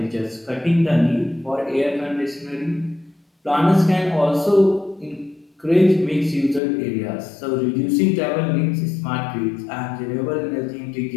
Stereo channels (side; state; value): right; drops out; at 6.6 s